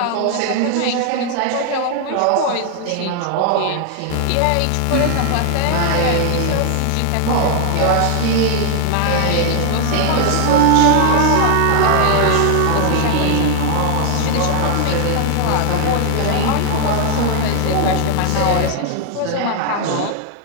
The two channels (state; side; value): different; both; correlation 0.00